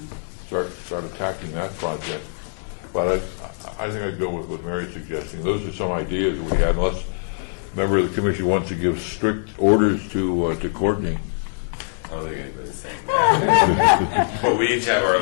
Start attacking that project. But I think I'd go with what Mary's suggesting. Those are some ideas that we had, unless a member of the commission wants to give strict orders to Courtney. I think it's the same thing. But we each have our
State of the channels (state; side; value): silent; right; digital silence